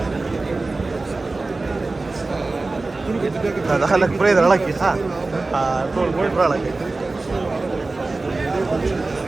دخلك بريد لك ها طول بوي برالك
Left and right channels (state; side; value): quieter; left; 3.4 dB